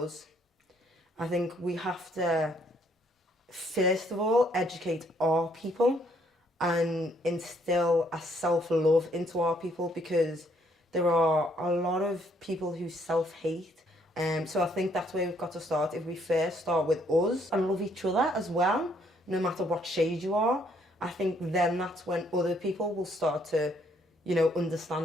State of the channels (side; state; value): both; normal; correlation 0.68